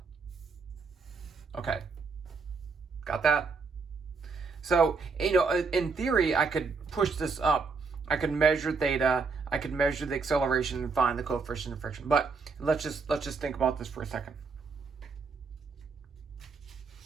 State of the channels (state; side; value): quieter; left; 4.7 dB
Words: Okay. Got that? So, in theory, I could push this up. I could measure theta. I could measure the acceleration and find the coefficient of friction. But let's just think about this for a second.